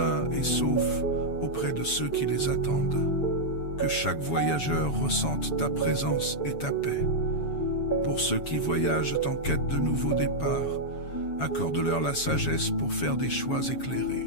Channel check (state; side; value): late; right; 7.1 ms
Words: et saufs auprès de ceux qui les attendent. Que chaque voyageur ressente ta présence et ta paix. Pour ceux qui voyagent en quête de nouveaux départs, accorde-leur la sagesse pour faire des choix